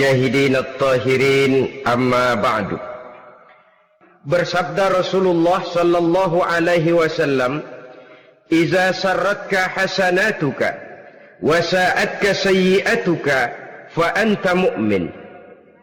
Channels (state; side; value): identical; both; correlation 1.00